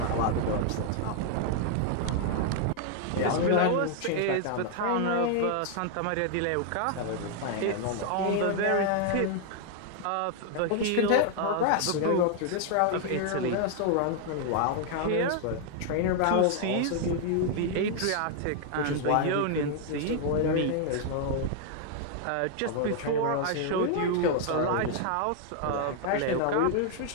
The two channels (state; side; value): different; both; correlation 0.00